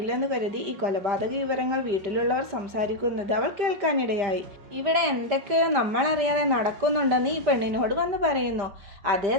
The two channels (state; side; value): late; left; 5.1 ms